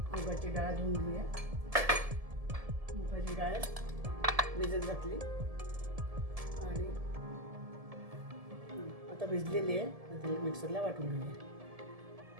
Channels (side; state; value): left; late; 1.7 ms